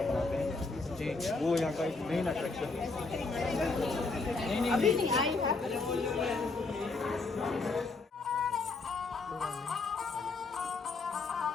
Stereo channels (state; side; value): quieter; right; 3.8 dB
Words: बनाते हैं जी, वो यहाँ का एक मेन अट्रैक्शन है। अभी नहीं आई है।